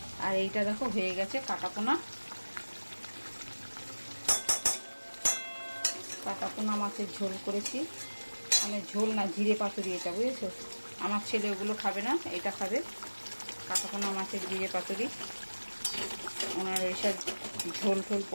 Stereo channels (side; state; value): both; inverted; correlation -1.00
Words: আর এইটা দেখো হয়ে গেছে কাটাপোনা। কাটাপোনা মাছের ঝোল করেছি, মানে ঝোল না, জিরে পাতুরি এটা, বুঝেছো? আমার ছেলে ওগুলো খাবে না, এটা খাবে। কাটাপোনা মাছের জিরে পাতুরি, ওনার ওইসব ঝোল ঝোল